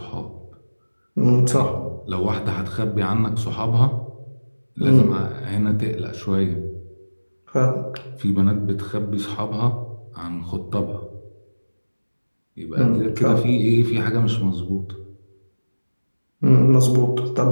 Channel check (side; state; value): both; inverted; correlation -1.00